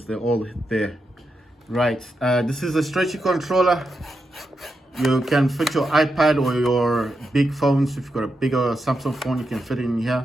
they're all there. Right, this is a stretchy controller. You can fit your iPad or your big phones. If you've got a bigger Samsung phone, you can fit it in here.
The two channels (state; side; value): normal; both; correlation 0.86